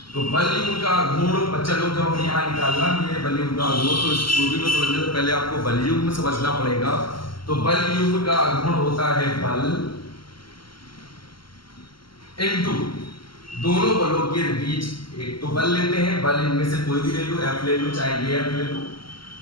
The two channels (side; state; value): right; late; 0.74 ms